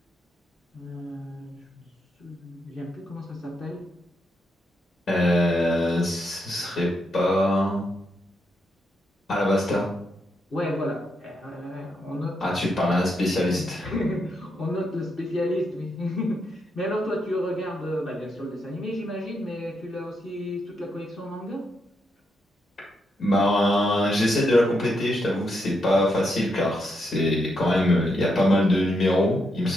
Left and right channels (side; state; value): both; normal; correlation 0.81